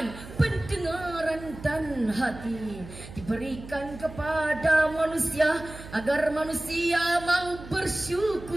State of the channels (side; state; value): right; noise; hum, 15 dB below the sound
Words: pendengaran, pikiran dan hati diberikan kepada manusia agar manusia mau